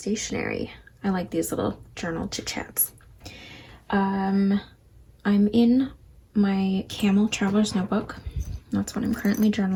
I like these little journal chit-chats. I'm in my Camel Traveler's Notebook. That's what I'm currently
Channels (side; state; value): both; identical; correlation 1.00